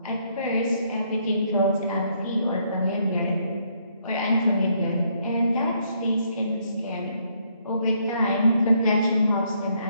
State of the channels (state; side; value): inverted; both; correlation -0.71